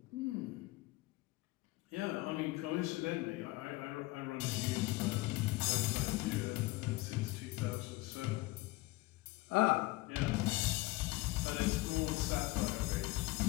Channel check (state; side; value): quieter; right; 20.8 dB